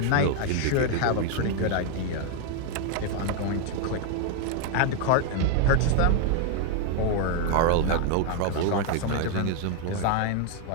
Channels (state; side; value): different; both; correlation 0.01